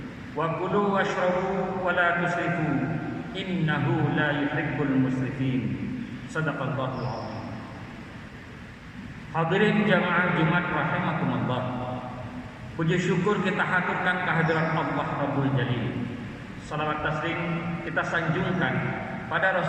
wa kulu washrabu wa la tusrifu innahu la yuhibbul musrifin. Shadaqallahul azim. Hadirin jamaah Jumat rahimakumullah. Puji syukur kita haturkan kehadirat Allah Rabbul Jalil. Salawat taslim kita sanjungkan pada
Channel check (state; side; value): identical; both; correlation 1.00